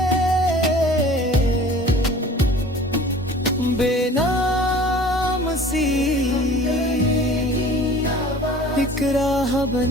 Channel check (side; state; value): both; normal; correlation 0.45